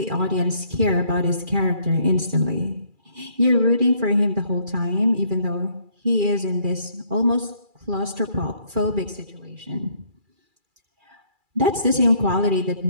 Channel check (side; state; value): left; late; 2.3 ms